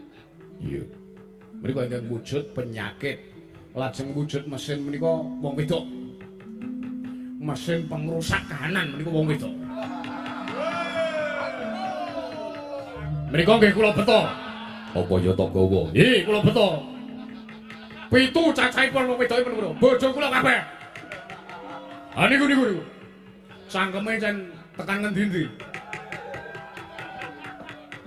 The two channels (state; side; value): identical; both; correlation 1.00